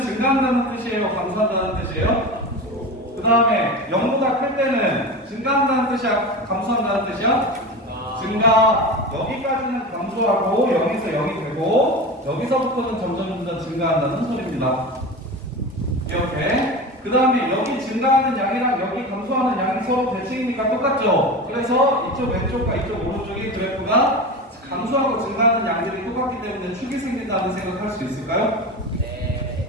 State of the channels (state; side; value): normal; both; correlation 0.27